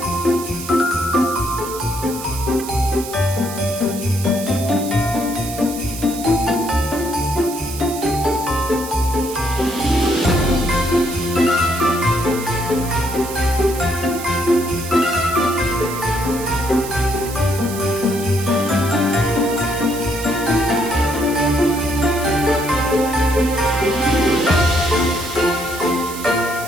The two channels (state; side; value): noise; right; hiss, 11 dB below the sound